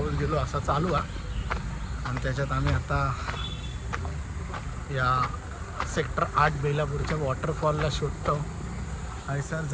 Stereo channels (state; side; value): identical; both; correlation 1.00